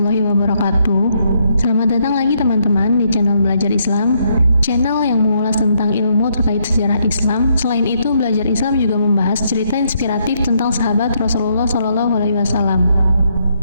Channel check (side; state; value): both; inverted; correlation -0.74